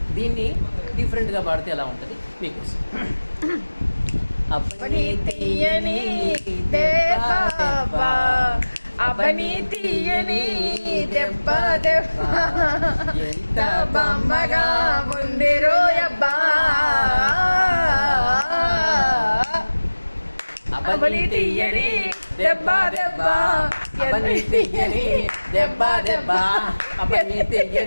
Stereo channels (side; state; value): both; inverted; correlation -1.00